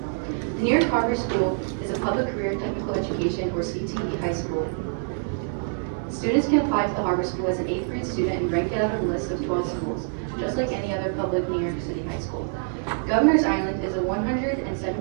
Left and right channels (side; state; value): left; silent; 60 dB below the other